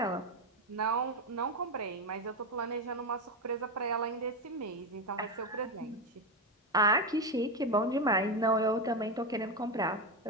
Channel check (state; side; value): normal; both; correlation 0.12